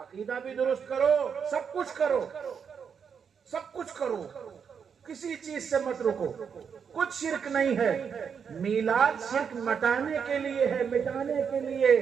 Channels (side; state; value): left; quieter; 6.8 dB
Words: بھی درست کرو، سب کچھ کرو، سب کچھ کرو، کسی چیز سے مت رکو، کچھ شرک نہیں ہے۔ میلاد شرک مٹانے کے لیے ہے، مٹانے کے لیے۔